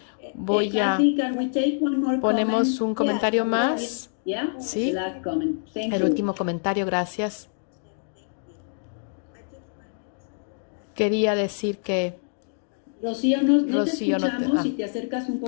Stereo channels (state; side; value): silent; right; digital silence